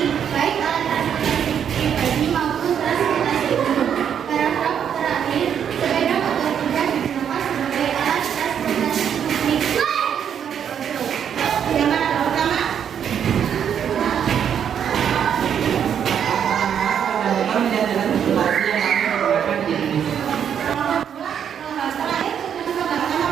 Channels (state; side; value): quieter; left; 8.4 dB